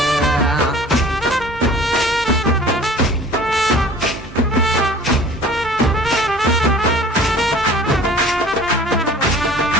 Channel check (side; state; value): both; normal; correlation 0.46